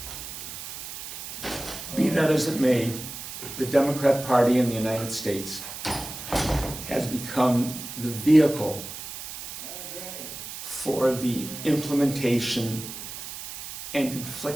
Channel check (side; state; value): right; noise; hiss, 9 dB below the sound